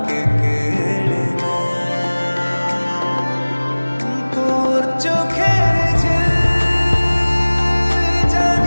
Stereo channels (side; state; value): both; inverted; correlation -1.00